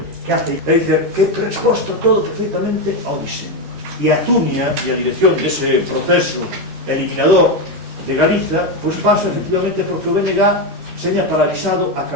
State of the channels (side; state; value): left; late; 13 ms